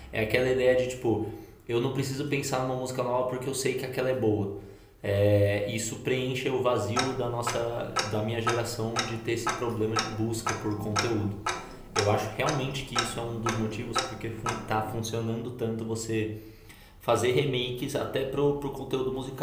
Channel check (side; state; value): both; identical; correlation 1.00